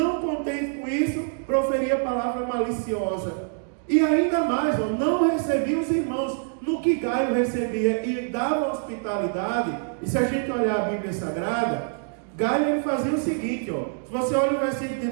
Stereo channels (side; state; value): left; silent; digital silence